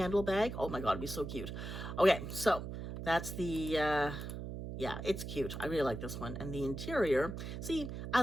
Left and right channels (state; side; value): noise; right; hum, 7 dB below the sound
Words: bag? Oh my God, it'd be so cute. Okay, so that's the, yeah, it's cute. I really like this one. And the interior, see,